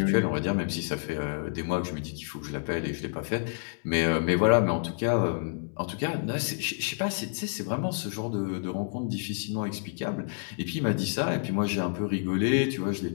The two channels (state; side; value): silent; right; digital silence